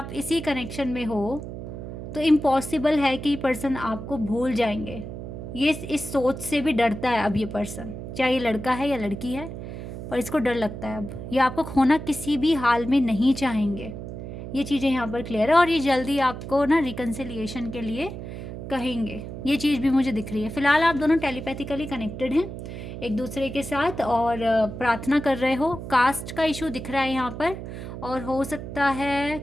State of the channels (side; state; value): right; noise; hum, 9 dB below the sound